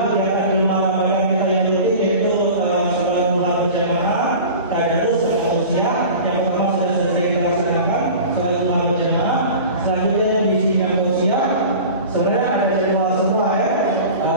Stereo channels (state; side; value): inverted; both; correlation -0.37